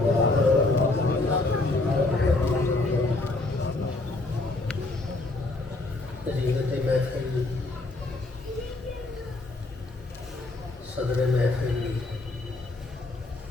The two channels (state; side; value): quieter; right; 3.1 dB